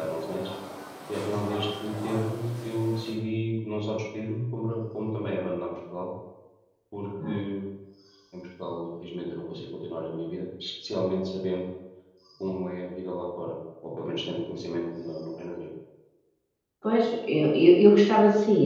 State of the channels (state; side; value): identical; both; correlation 1.00